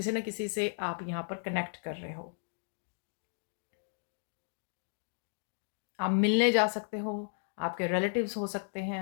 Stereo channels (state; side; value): silent; right; digital silence